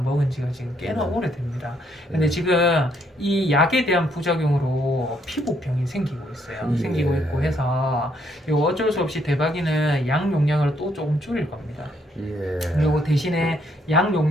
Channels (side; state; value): both; normal; correlation 0.71